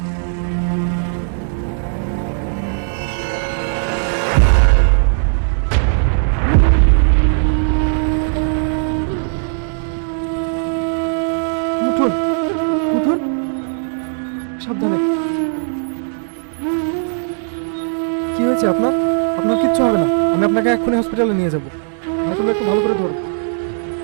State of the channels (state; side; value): silent; left; 68 dB below the other